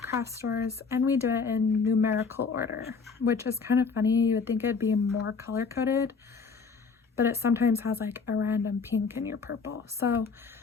craft stores, and we do it in numerical order, which is kind of funny. You would think it'd be more color coded, but it sometimes has like a random pink in your purple. So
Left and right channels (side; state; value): right; quieter; 5.1 dB